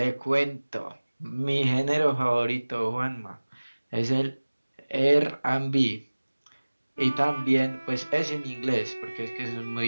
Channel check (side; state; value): both; inverted; correlation -1.00